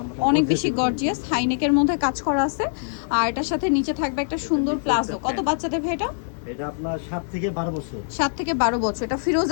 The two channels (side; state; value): right; silent; 63 dB below the other